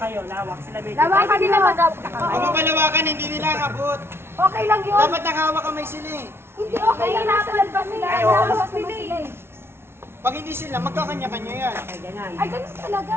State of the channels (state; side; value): late; left; 0.12 ms